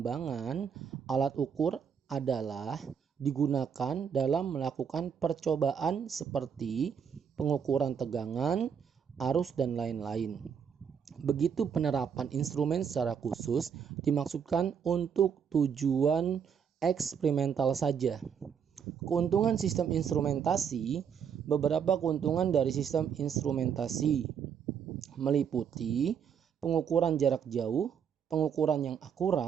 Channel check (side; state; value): left; quieter; 7.4 dB